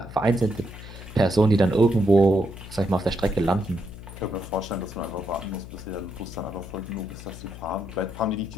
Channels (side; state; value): left; noise; hum, 13 dB below the sound